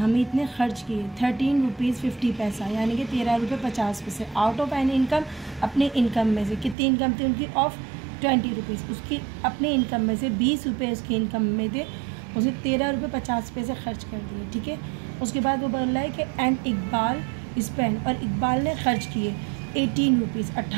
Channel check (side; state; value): left; drops out; at 6.8 s